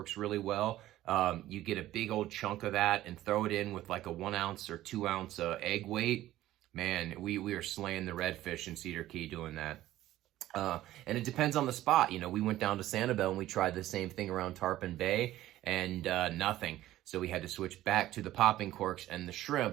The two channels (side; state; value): left; quieter; 14.6 dB